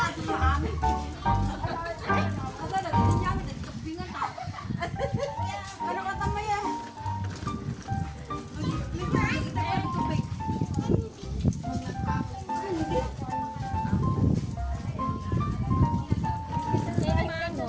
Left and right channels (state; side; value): identical; both; correlation 1.00